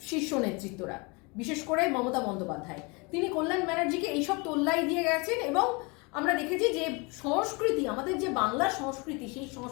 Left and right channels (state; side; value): quieter; right; 29.0 dB